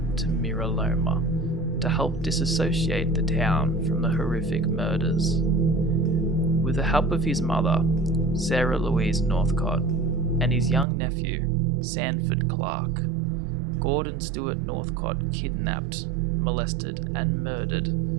to Mira Loma to help disassociate the town from the horrific murders. With the help of his mother, Sarah Louise Northcott, and his young nephew, Sanford Clark, Gordon Stewart Northcott kidnapped, molested, and murdered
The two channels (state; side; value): drops out; left; at 10.9 s